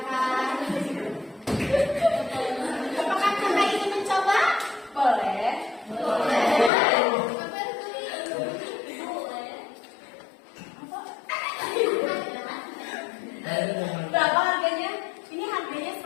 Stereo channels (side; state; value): right; drops out; at 6.7 s